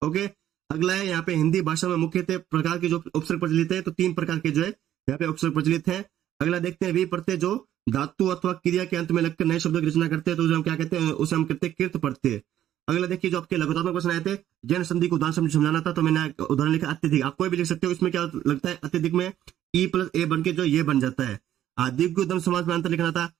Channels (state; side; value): quieter; left; 11.8 dB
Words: ओके, अगला है यहाँ पे हिंदी भाषा में मुख्यतः प्रकार के जो उपसर्ग प्रचलित है, तो 3 प्रकार के जो है यहाँ पे उपसर्ग प्रचलित है। अगला देखते हैं वी प्रत्यय जो धातु अथवा क्रिया के अंत में लगकर नए शब्दों की रचना करते हैं तो उसे हम क्या कहते हैं? उसे हम कहते हैं कृत प्रत्यय। अगला देखिए जो आपके लघुतात्मक क्वेश्चन आए थे जैन संधि को उदाहरण समझाना था, तो मैंने उदाहरण लिखा अत्यधिक। आप कोई भी लिख सकते हो, इसमें क्या लगता है अत्यधिक में ई प्लस ए बन के जो ये बन जाता है। दिग्गु दम समाज में अंतर लिखना था,